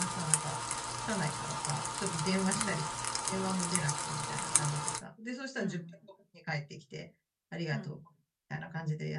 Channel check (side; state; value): both; identical; correlation 1.00